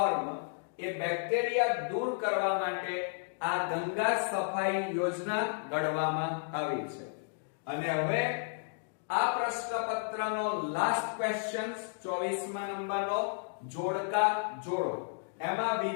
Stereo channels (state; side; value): silent; right; digital silence